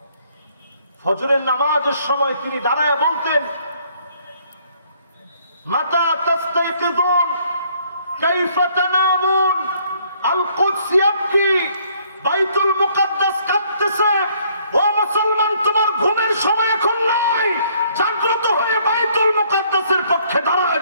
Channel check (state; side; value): inverted; both; correlation -0.64